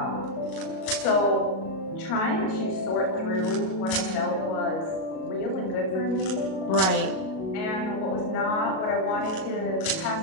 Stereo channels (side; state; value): right; late; 37 ms